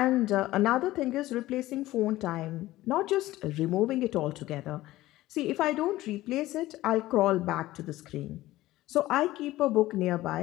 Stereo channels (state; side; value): quieter; right; 16.6 dB